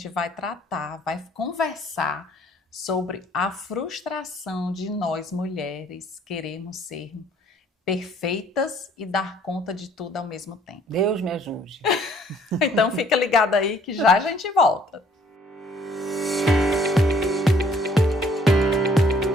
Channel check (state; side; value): normal; both; correlation 0.60